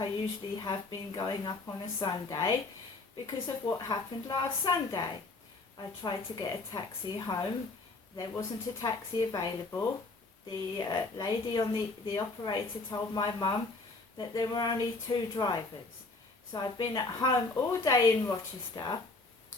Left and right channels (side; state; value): right; quieter; 3.4 dB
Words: usually have been going up on a Sunday because of what happened last Sunday. I tried to get a taxi home. There wasn't a taxi available. The lady on the operator told my mum that there were only 2 drivers. So I've been at home all day in Rochester,